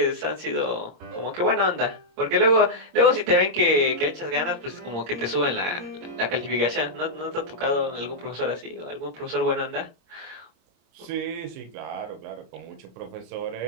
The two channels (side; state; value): left; late; 26 ms